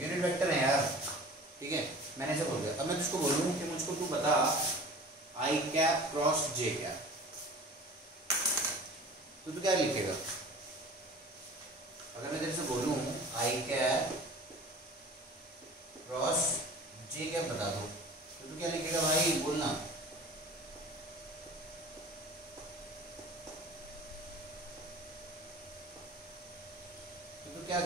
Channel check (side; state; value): both; normal; correlation 0.42